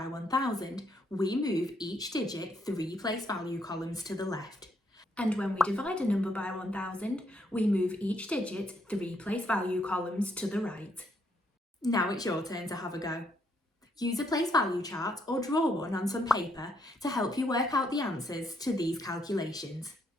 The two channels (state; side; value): normal; both; correlation 0.74